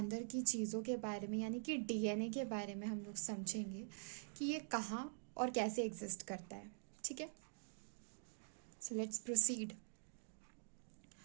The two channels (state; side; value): silent; left; digital silence